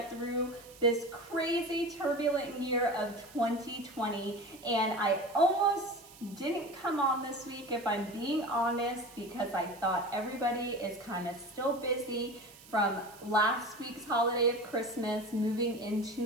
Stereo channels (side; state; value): right; noise; hiss, 21 dB below the sound